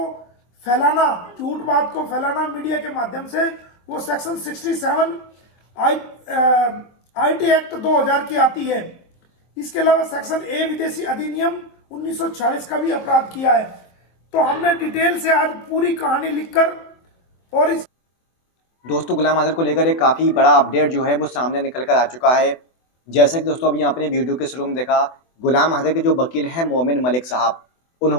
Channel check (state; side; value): late; right; 24 ms